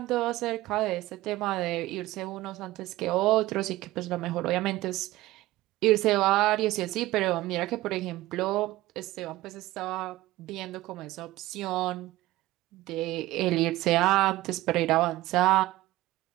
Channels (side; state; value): left; quieter; 17.3 dB